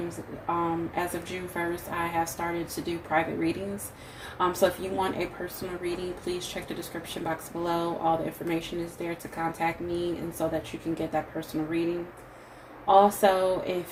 as of June 1st, I have started to do private readings. So if you want a personal reading, please check the description box below. All the information is there to contact me and so that you can get that personal reading. Also, if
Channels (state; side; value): identical; both; correlation 1.00